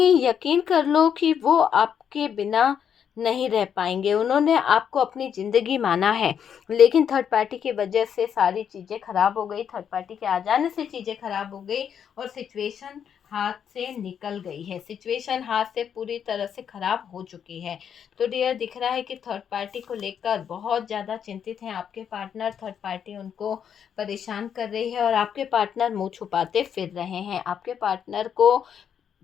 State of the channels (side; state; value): right; quieter; 8.2 dB